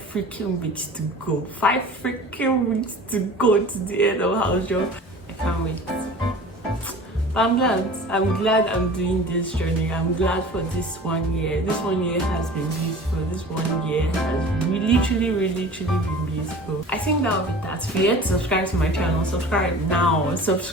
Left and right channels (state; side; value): normal; both; correlation 0.41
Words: freaking weeks to go. 5 freaking weeks to go to the end of house job. I can't wait. But I'm glad I'm doing this journey. I'm glad for this 1 year. This 1 year has been beautiful. This 1 year has literally been beautiful. I think that'll be that. If you're yet to subscribe to my channel, subscribe now.